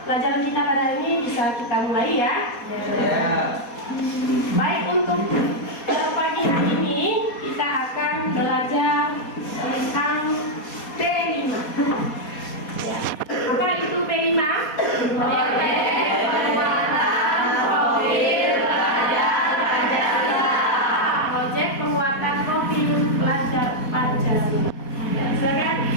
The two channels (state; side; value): late; right; 4.2 ms